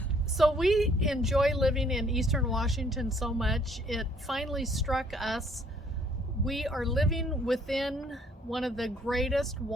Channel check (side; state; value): both; normal; correlation 0.62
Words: So we enjoy living in Eastern Washington so much. It finally struck us. We are living within one of the greatest